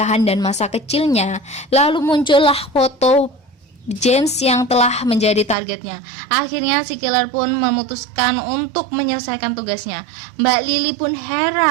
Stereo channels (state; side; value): drops out; left; at 5.6 s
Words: dan masa kecilnya, lalu muncullah foto James yang telah menjadi targetnya. Akhirnya si killer pun memutuskan untuk menyelesaikan tugasnya. Mbak Lily pun